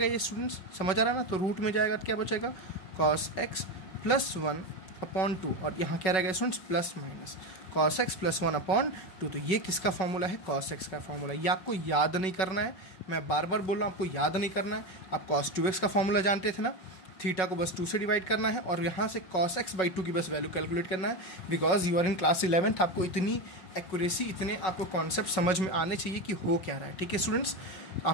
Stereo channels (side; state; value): right; late; 5.4 ms